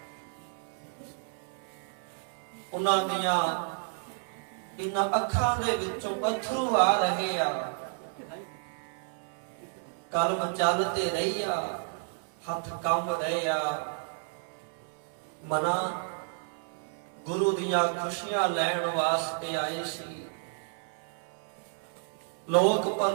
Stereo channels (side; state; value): left; silent; 57 dB below the other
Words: ਉਹਨਾਂ ਦੀਆਂ ਇਹਨਾਂ ਅੱਖਾਂ ਦੇ ਵਿੱਚੋਂ ਅਥਰੂ ਆ ਰਹੇ ਆ। ਕਲਮ ਚੱਲ ਤੇ ਰਹੀ ਆ, ਹੱਥ ਕੰਬ ਰਹੇ ਆ। ਮਨਾ ਗੁਰੂ ਦੀਆਂ ਖੁਸ਼ੀਆਂ ਲੈਣ ਵਾਸਤੇ ਆਏ ਸੀ, ਲੋਕ